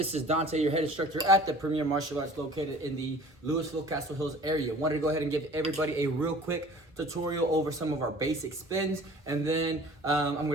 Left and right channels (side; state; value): both; normal; correlation 0.47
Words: is Dante, your head instructor at the Premier Martial Arts located in the Louisville, Castle Hills area. Wanted to go ahead and give everybody a real quick tutorial over some of our basic spins, and then I'm going